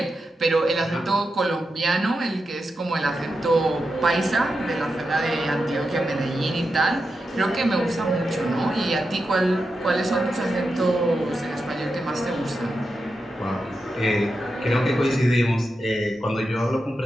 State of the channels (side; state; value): both; normal; correlation 0.88